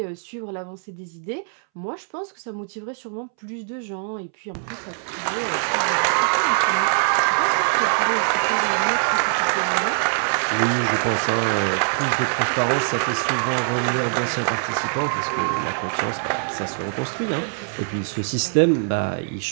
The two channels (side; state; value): left; silent; 63 dB below the other